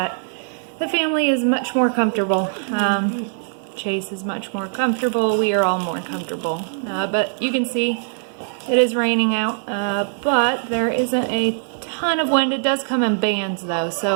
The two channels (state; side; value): silent; left; 65 dB below the other